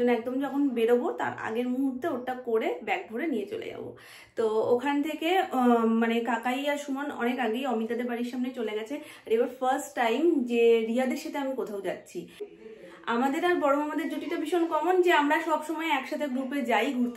একদম যখন বেরোবো তার আগের মুহূর্তে ওটা করে ব্যাগ ভরে নিয়ে চলে যাব। তো ওখান থেকে মানে কাকাই আর সুমন অনেক আগেই অমিতাদের বাড়ির সামনে চলে গেছে। আর এবার ফার্স্ট টাইম যে রিয়াদের সাথে আমি কোথাও যাচ্ছি। আমাদের আর বড় মামাদের জুটিটা ভীষণ কমন যে আমরা সব সময় একসাথে গ্রুপে যাই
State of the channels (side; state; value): both; identical; correlation 1.00